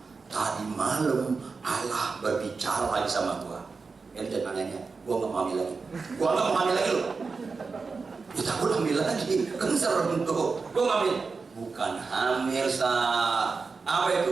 Tadi malam Allah berbicara lagi sama gua. Dan anehnya, gua nggak mau hamil lagi. Gua nggak mau hamil lagi loh. Ya takut hamil lagi, kan serem tuh. Gua nggak hamil. Bukan hamil sah. Apa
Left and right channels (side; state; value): left; quieter; 4.6 dB